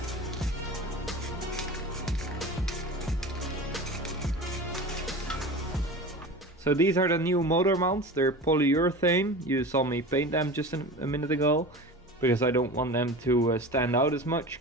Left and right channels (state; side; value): normal; both; correlation 0.33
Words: So these are the new motor mounts. They're polyurethane. You saw me paint them just a minute ago, because I don't want them to stand out as much,